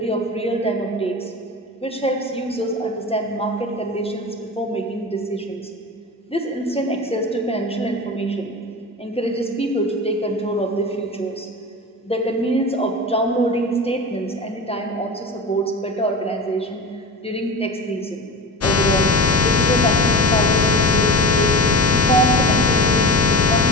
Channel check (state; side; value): normal; both; correlation 0.29